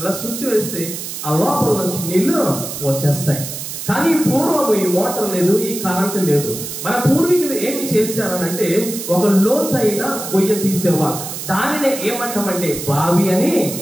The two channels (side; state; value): right; noise; hiss, 7 dB below the sound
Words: స్విచ్ వేస్తే ఆ లోపల నుంచి నీళ్లు వచ్చేస్తాయి. కానీ పూర్వము ఈ మోటార్ లేదు, ఈ కరెంటు లేదు. మన పూర్వీకులు ఏమి చేశారనంటే ఒక లోతైన గొయ్య తీసేవారు. దానినే ఏమంటామంటే బావి అని